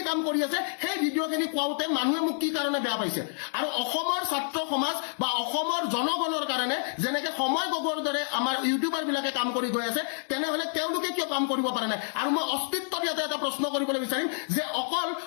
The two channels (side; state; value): right; silent; digital silence